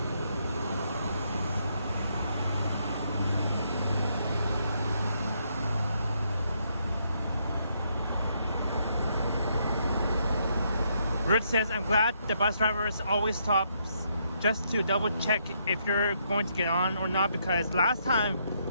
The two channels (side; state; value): both; inverted; correlation -0.75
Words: Ruth says, I'm glad the bus drivers always stops just to double check if you're going to get on or not, because last time